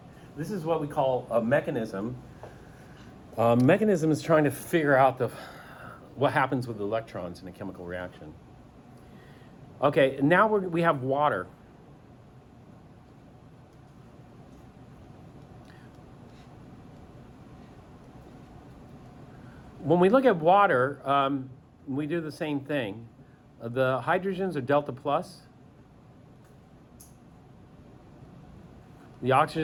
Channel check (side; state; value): both; identical; correlation 1.00